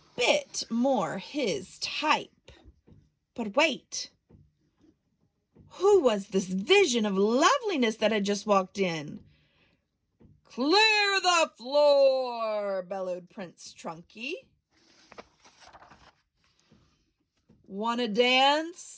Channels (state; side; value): identical; both; correlation 1.00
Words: bit more his type. But wait, who was this vision of loveliness that had just walked in? Clear the floor, bellowed Prince Trunky. Want to